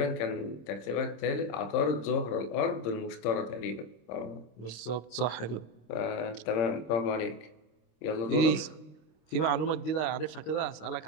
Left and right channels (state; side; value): late; right; 26 ms